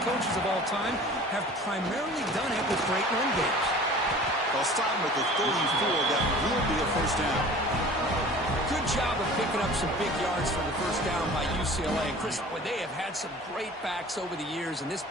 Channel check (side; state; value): both; normal; correlation 0.44